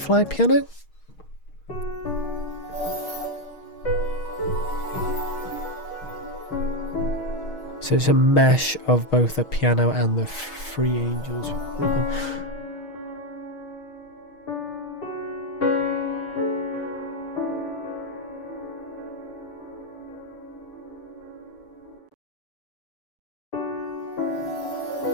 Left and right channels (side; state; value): right; late; 6.4 ms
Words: piano. So it's a mesh of both the piano and the Free Angels rhythm.